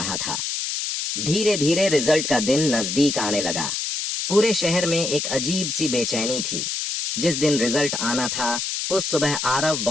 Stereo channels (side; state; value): left; noise; hiss, 2 dB below the sound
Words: था। धीरे धीरे रिजल्ट का दिन नजदीक आने लगा। पूरे शहर में एक अजीब सी बेचैनी थी। जिस दिन रिजल्ट आना था उस सुबह आरव